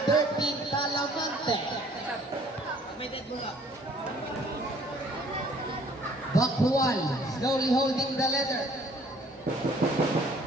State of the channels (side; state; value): both; normal; correlation 0.58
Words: Talamante. Bakwal, slowly holding the leather.